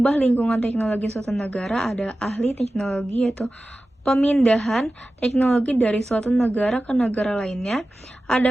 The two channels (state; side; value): normal; both; correlation 0.95